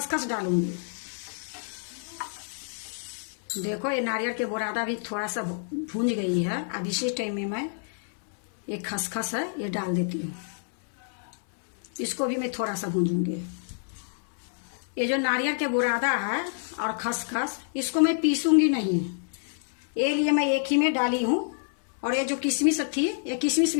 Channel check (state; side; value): silent; right; 59 dB below the other